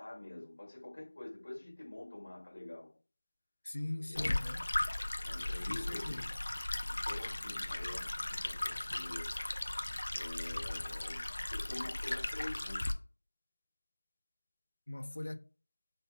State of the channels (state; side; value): inverted; both; correlation -1.00